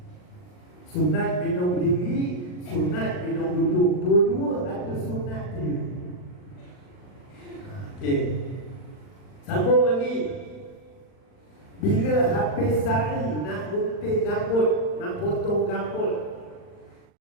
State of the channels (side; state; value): right; late; 39 ms